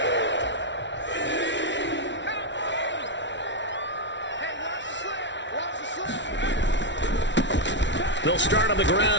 They'll start on the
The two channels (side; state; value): right; late; 0.52 ms